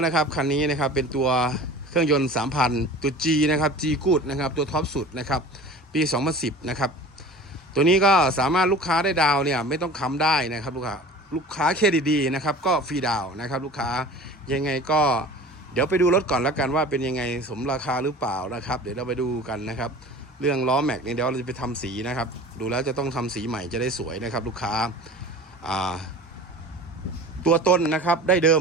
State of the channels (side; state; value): both; normal; correlation 0.40